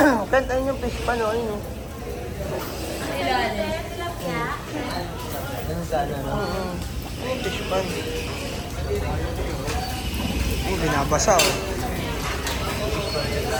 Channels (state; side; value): identical; both; correlation 1.00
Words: Kent, ayun yung fish pan o. Ayun o. Ganun sana, no? Ayun, fish pan. Oh, binabasa o.